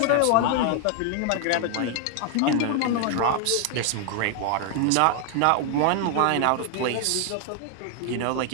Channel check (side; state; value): both; different; correlation 0.00